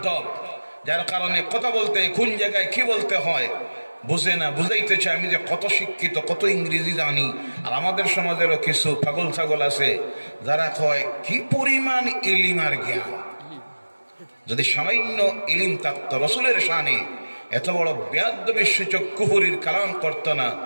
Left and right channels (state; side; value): inverted; both; correlation -1.00